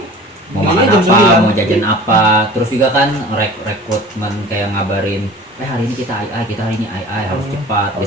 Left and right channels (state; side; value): normal; both; correlation 0.42